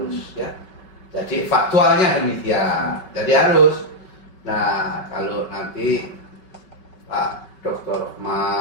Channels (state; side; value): late; right; 5.3 ms